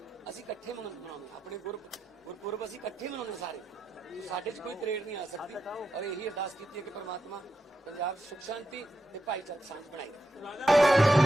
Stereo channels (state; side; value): normal; both; correlation 0.86